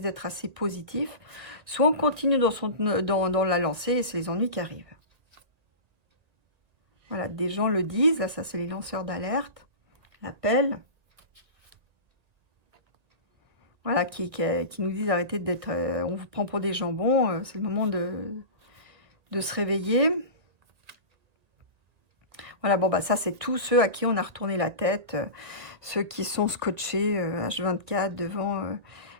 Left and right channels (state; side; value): late; left; 1.9 ms